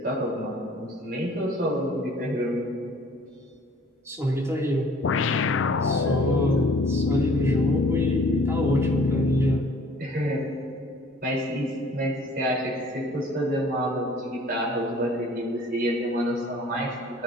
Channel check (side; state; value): both; normal; correlation 0.53